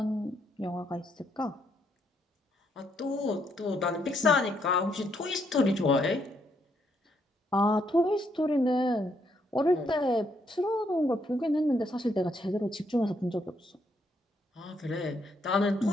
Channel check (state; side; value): normal; both; correlation 0.74